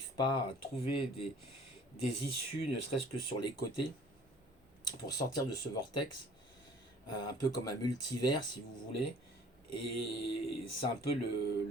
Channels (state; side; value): normal; both; correlation 0.51